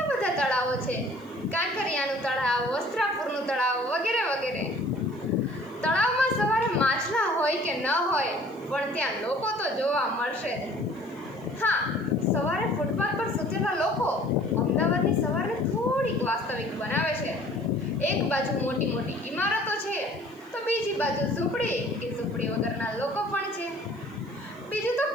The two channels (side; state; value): right; noise; hiss, 29 dB below the sound